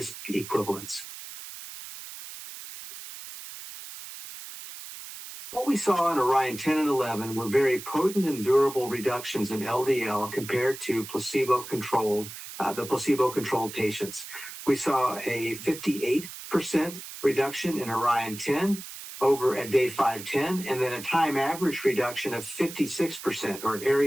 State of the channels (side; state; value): right; noise; hiss, 12 dB below the sound